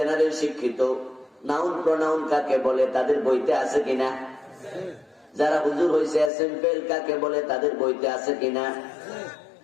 শিক্ষিত, নাউন প্রোনাউন কাকে বলে তাদের বইতে আছে কিনা? যারা হুজুর হয়েছে, এসএম ফেইল কাকে বলে তাদের বইতে আছে কিনা?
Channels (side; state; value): right; drops out; at 6.3 s